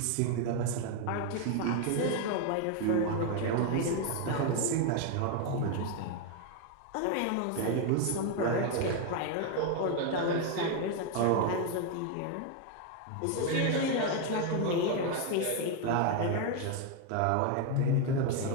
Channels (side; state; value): both; different; correlation 0.01